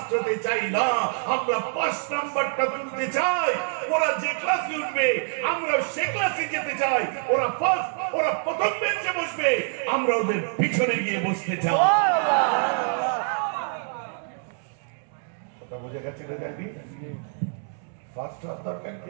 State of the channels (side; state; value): left; silent; 61 dB below the other